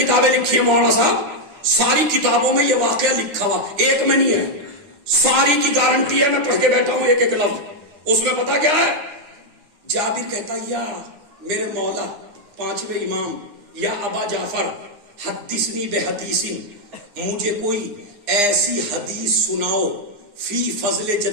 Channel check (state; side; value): late; left; 9.9 ms